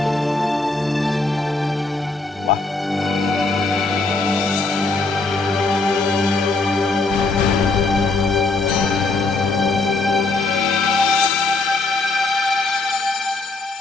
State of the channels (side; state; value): right; quieter; 3.5 dB